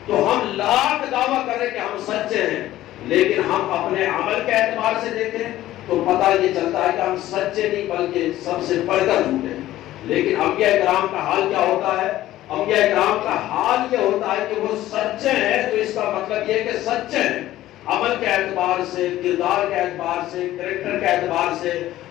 تو ہم لاکھ دعویٰ کریں کہ ہم سچے ہیں، لیکن ہم اپنے عمل کے اعتبار سے دیکھیں تو پتہ یہ چلتا ہے کہ ہم سچے نہیں بلکہ سب سے بڑھ کر جھوٹے ہیں۔ لیکن انبیاء کرام کا حال کیا ہوتا ہے؟ انبیاء کرام کا حال یہ ہوتا ہے کہ وہ سچے ہیں، تو اس کا مطلب یہ کہ سچے ہیں عمل کے اعتبار سے، کردار کے اعتبار سے، کریکٹر کے اعتبار سے،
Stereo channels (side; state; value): right; quieter; 14.6 dB